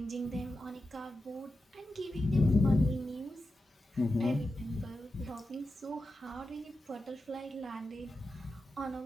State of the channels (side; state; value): both; normal; correlation 0.90